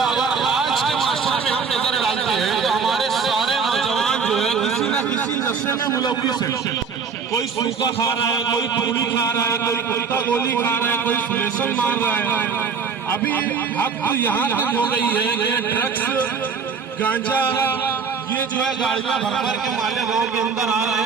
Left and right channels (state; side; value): quieter; left; 5.8 dB